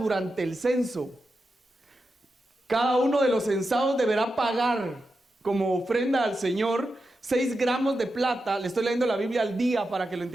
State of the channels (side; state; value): both; normal; correlation 0.89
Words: el censo. Cada uno de los censados deberá pagar como ofrenda al Señor 6 gramos de plata. Le estoy leyendo la Biblia al día para que lo